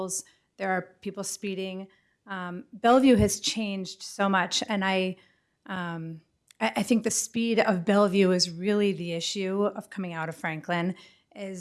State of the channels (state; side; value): identical; both; correlation 1.00